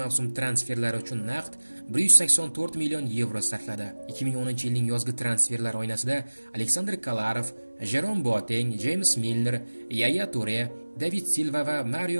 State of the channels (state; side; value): inverted; both; correlation -1.00